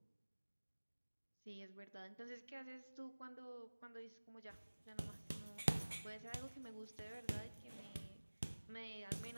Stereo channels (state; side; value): inverted; both; correlation -1.00